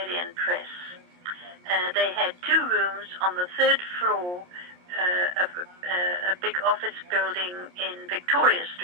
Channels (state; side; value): late; left; 28 ms